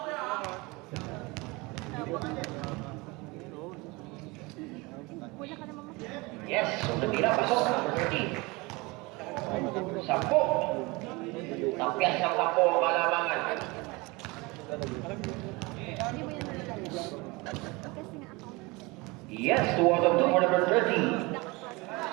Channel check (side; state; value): left; quieter; 24.8 dB